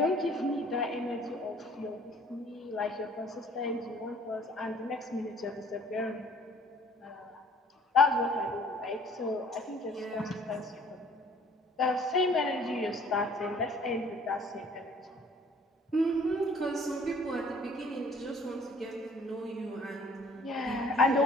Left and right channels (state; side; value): normal; both; correlation 0.55